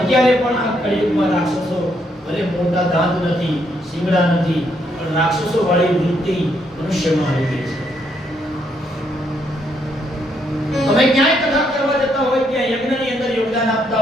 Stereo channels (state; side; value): normal; both; correlation 0.74